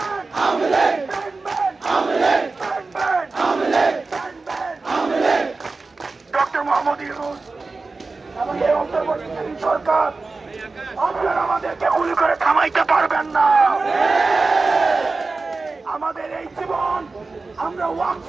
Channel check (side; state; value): left; quieter; 3.8 dB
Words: আওয়ামী লীগ, কানবেন আওয়ামী লীগ, কানবেন আওয়ামী লীগ, কানবেন আওয়ামী লীগ, কানবেন আওয়ামী লীগ। ডক্টর মোহাম্মদ ইউনূস এবং এই অন্তর্বর্তীকালীন সরকার, আপনারা আমাদেরকে গুলি করে থামাইতে পারবেন না। আমাদের এই জীবন আমরা ওয়াকফ